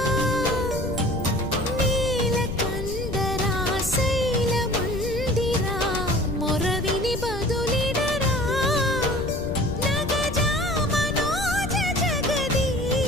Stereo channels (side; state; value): left; noise; rumble, 8 dB below the sound